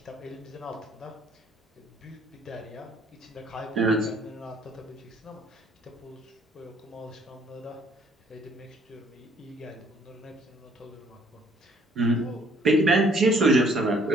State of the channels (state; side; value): normal; both; correlation 0.62